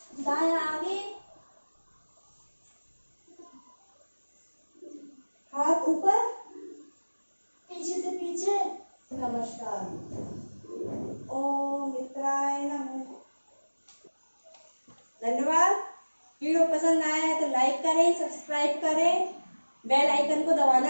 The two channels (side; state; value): both; inverted; correlation -1.00